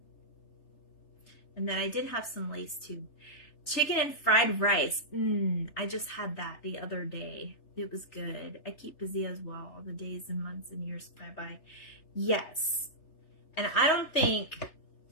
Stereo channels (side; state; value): right; late; 3.3 ms